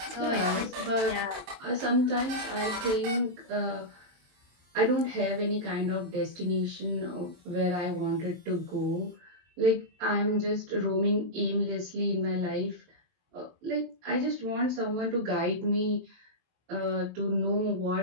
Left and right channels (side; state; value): left; late; 22 ms